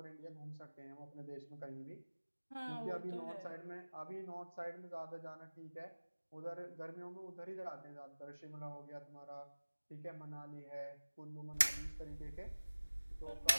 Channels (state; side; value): inverted; both; correlation -1.00